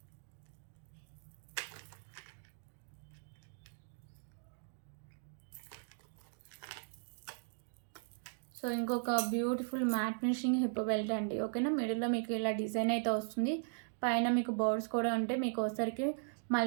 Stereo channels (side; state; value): left; silent; digital silence